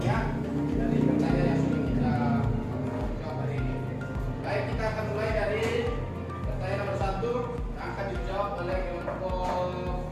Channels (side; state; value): both; identical; correlation 1.00